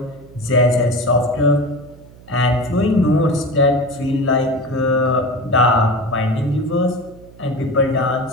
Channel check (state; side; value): noise; right; hum, 22 dB below the sound